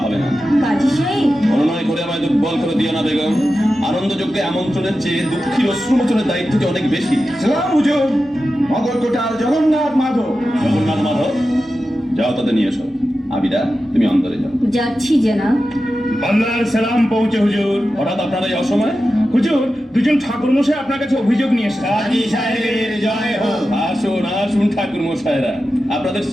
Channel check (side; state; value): both; normal; correlation 0.92